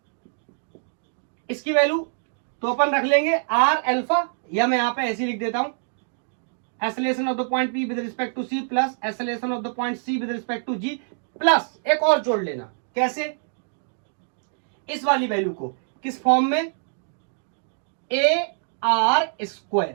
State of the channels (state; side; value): silent; left; digital silence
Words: इसकी वैल्यू तो अपन रख लेंगे आर अल्फा, या मैं यहां पे ऐसे लिख देता हूं, acceleration of the point P with respect to C plus acceleration of the point C with respect to G, plus एक और जोड़ लेना, कैसे, इस वाली वैल्यू को किस फॉर्म में, ए आर